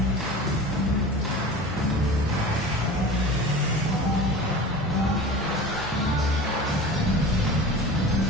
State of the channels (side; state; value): both; normal; correlation 0.35